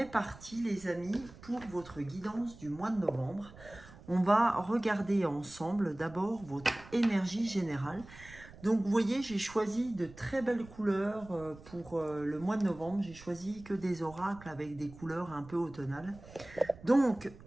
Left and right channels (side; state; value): right; noise; rumble, 19 dB below the sound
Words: parti les amis pour votre guidance du mois de novembre. On va regarder ensemble d'abord votre énergie générale. Donc, vous voyez, j'ai choisi de très belles couleurs pour le mois de novembre. J'ai choisi que des oracles avec des couleurs un peu automnales. Donc,